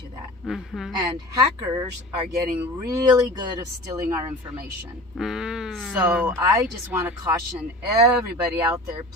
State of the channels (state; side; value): normal; both; correlation 0.37